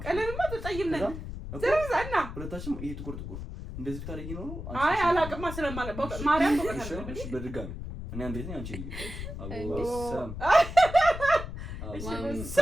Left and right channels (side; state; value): left; noise; rumble, 8 dB below the sound